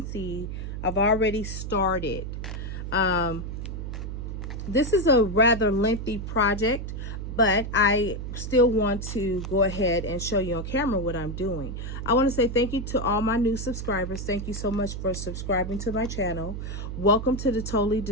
see, I've already started. This is a rather lengthy project, but I still want to go ahead and show you on camera what I'm doing. I want to say thank you to all my new subscribers. Thank you so much for subscribing to my channel. Welcome to the Totally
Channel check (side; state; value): right; noise; hum, 6 dB below the sound